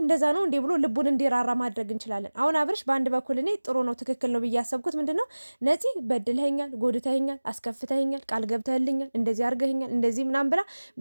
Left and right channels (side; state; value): both; inverted; correlation -1.00